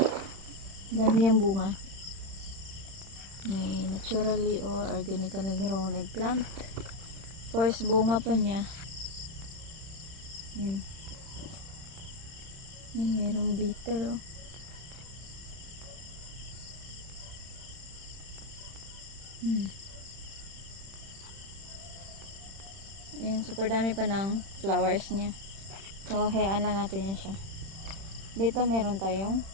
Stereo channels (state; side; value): late; left; 31 ms